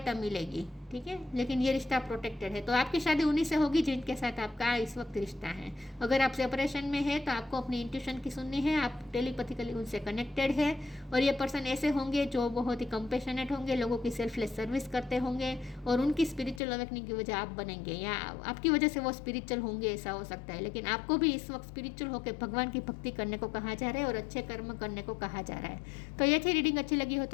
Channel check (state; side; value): drops out; right; at 16.6 s